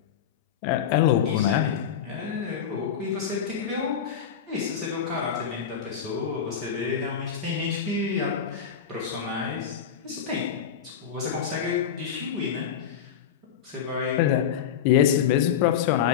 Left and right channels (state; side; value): quieter; right; 8.2 dB